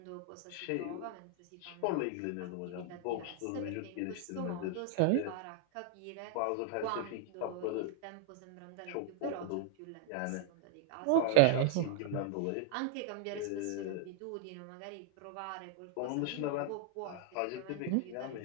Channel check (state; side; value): different; both; correlation 0.00